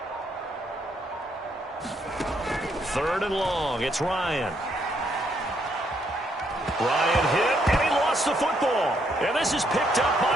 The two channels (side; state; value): both; normal; correlation 0.73